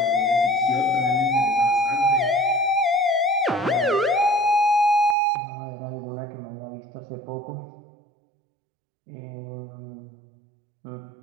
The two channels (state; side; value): drops out; left; at 5.2 s